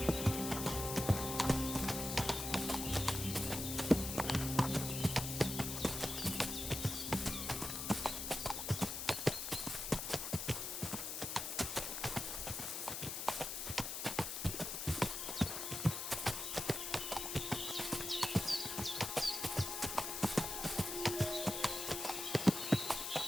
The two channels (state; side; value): noise; left; hiss, 4 dB below the sound